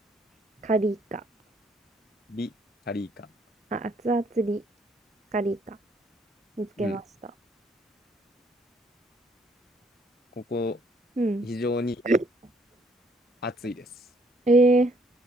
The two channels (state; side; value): normal; both; correlation 0.66